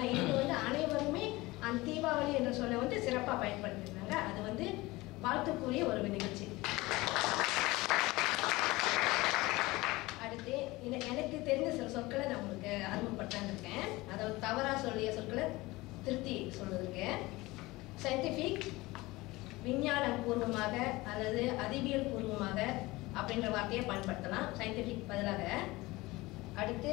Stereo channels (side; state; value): right; quieter; 20.8 dB